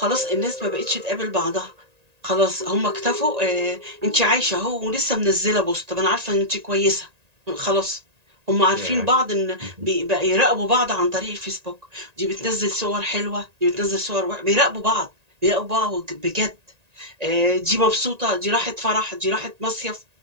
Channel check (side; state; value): left; late; 1.9 ms